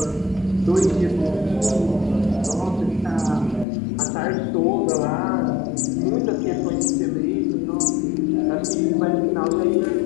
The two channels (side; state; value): right; drops out; at 3.7 s